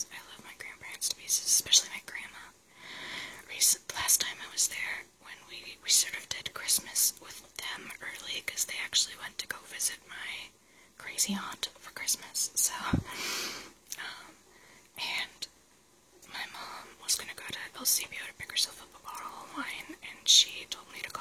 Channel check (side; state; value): both; identical; correlation 1.00